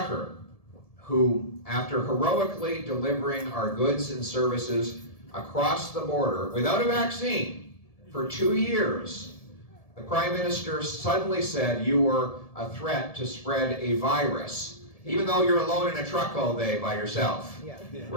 who, after heroically delivering our goods and services across the border without a vaccine for 2 years, the Prime Minister suddenly said you were a threat to spread a virus, even though you're alone in a truck all day by yourself,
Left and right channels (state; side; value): late; right; 1.7 ms